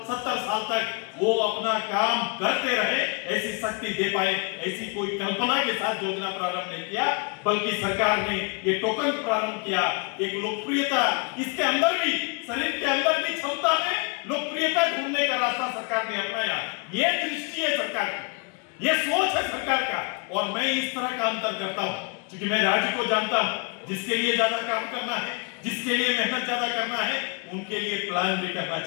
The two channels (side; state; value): right; quieter; 34.9 dB